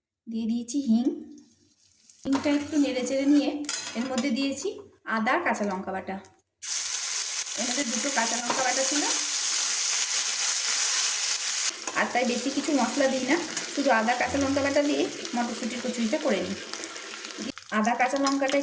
দিয়ে দিয়েছি হিংটা একটু নেড়ে চেড়ে নিয়ে এর মধ্যে দিয়েছি আদা, কাঁচা লঙ্কা বাটা। এর মধ্যে 2টো কাঁচা লঙ্কা বাটা ছিল, আর তাই বেশি কিছু মশলা দিই না, শুধু আদা কাঁচা লঙ্কা বাটা দিয়ে মটরশুঁটির কচুরিটা করে নিই। আদা কাঁচা লঙ্কাটা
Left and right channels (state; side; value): identical; both; correlation 1.00